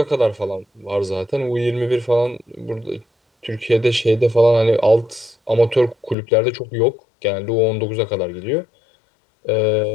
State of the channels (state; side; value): drops out; right; at 6.2 s